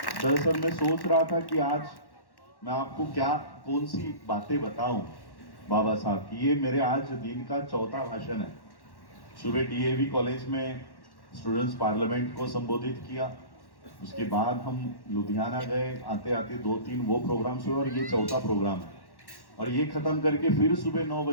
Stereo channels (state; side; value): late; right; 1.1 ms